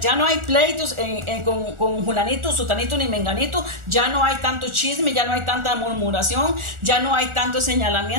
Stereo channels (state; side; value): late; left; 1.4 ms